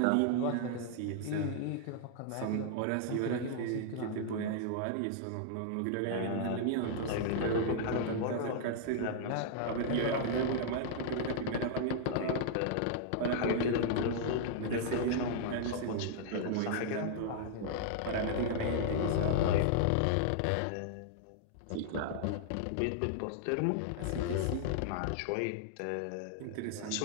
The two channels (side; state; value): both; different; correlation -0.01